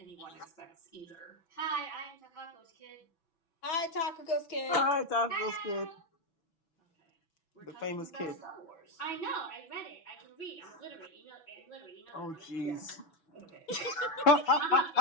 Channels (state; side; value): late; right; 6.1 ms